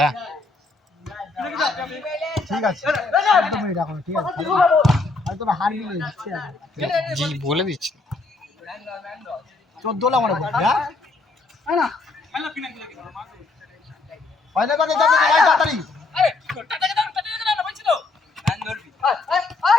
ঠিক আছে তুমি রাখো ঠিক আছে আর তোরা হারবি না দিচ্ছি জি বলে দিচ্ছি 14 লা মনে করছি হ্যাঁ না খেলা কিনা কি লাগে হয় না মানে দাদা ভাই তাড়াতাড়ি আরে টাটাকে দাও না বলছি তো ম্যান ধরবি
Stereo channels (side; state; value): right; quieter; 3.6 dB